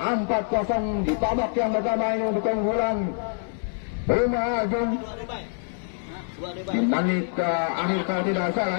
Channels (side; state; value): right; silent; digital silence